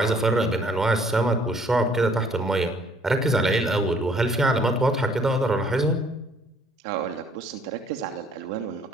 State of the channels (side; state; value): both; normal; correlation 0.60